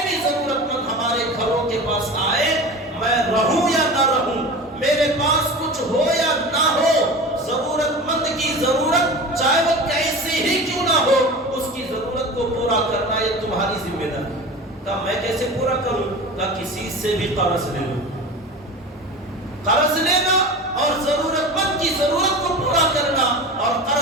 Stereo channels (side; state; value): both; normal; correlation 0.32